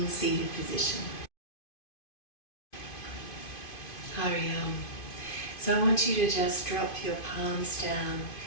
seated position. Hari Om. So I want you to just drop your palms down,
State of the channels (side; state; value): right; late; 2.5 ms